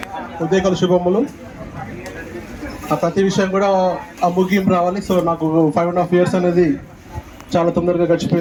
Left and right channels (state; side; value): identical; both; correlation 1.00